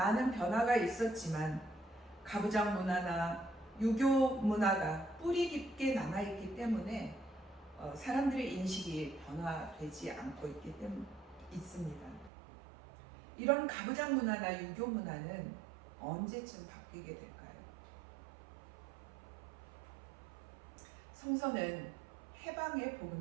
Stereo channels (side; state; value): left; drops out; at 12.3 s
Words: 변화가 있었지만 가부장 문화나 유교 문화가 뿌리 깊게 남아있기 때문에 사람들의 인식이 변화되지 않고 있습니다. 이런 가부장 문화나 유교 문화는 언제쯤 바뀌게 될까요? 성서는 해방의